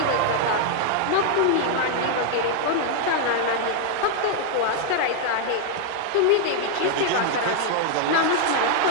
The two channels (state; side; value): different; both; correlation 0.00